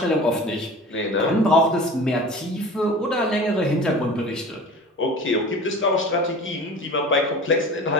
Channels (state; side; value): normal; both; correlation 0.38